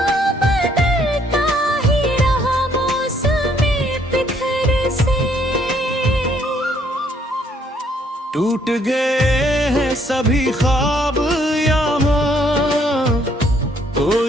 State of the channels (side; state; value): both; normal; correlation 0.67